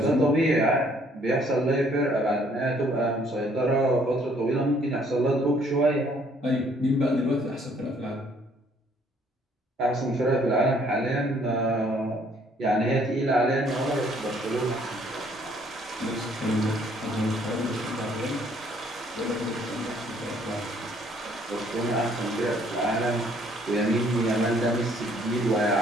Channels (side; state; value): both; normal; correlation 0.63